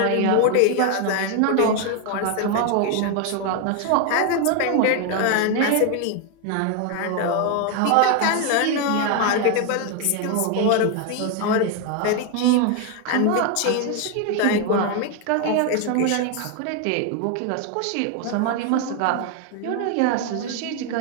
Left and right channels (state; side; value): different; both; correlation 0.01